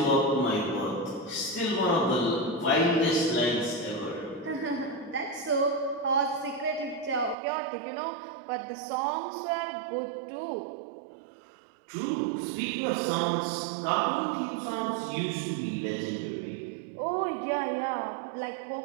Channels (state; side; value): drops out; left; at 7.4 s